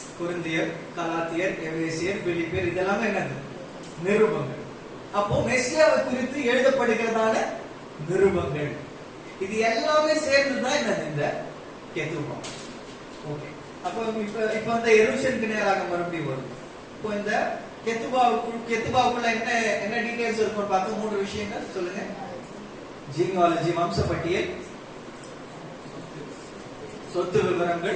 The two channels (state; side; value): identical; both; correlation 1.00